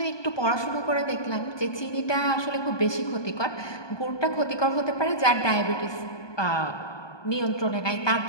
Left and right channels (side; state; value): right; late; 1.2 ms